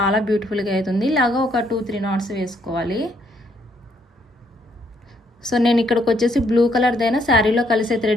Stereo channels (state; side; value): normal; both; correlation 0.70